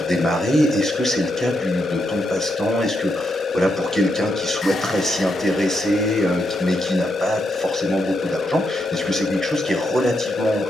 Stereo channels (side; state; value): both; normal; correlation 0.82